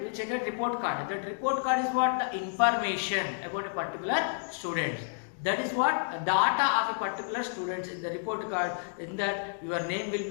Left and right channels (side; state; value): right; silent; digital silence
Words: will check a report card. That report card is what? The information about a particular student. That is what? Data of a particular student in the report card. In that your name will